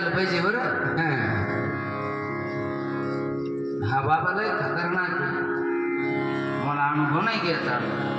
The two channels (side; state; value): both; identical; correlation 1.00